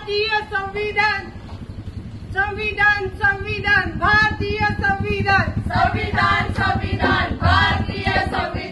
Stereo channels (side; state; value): both; identical; correlation 1.00